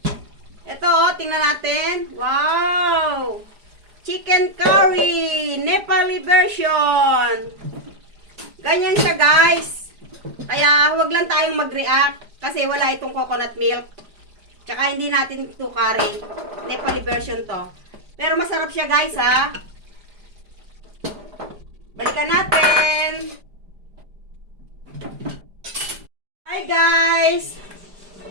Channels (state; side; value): late; left; 4.9 ms